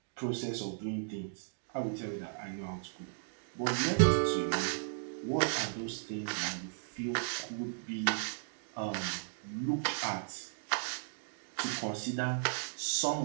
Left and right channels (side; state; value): left; silent; digital silence